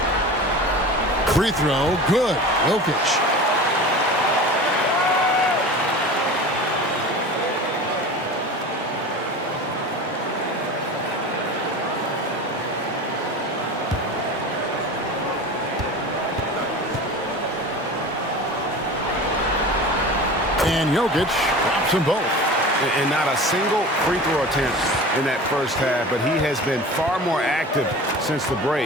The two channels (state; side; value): normal; both; correlation 0.35